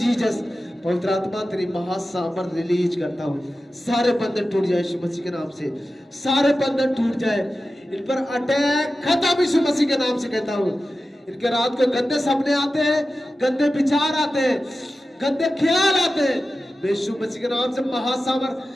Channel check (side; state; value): both; normal; correlation 0.94